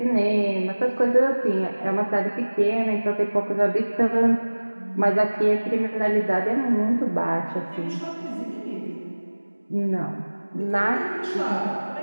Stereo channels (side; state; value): both; inverted; correlation -1.00